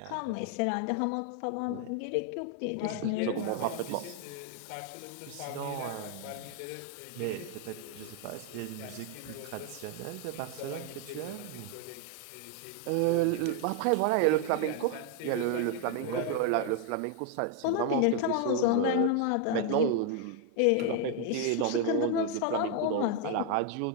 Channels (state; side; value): different; both; correlation 0.00